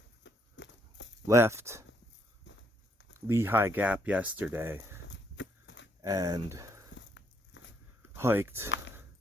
left Lehigh Gap yesterday and hiked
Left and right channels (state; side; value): normal; both; correlation 0.72